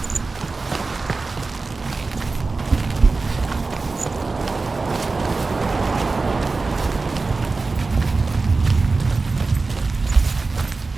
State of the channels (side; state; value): left; quieter; 3.8 dB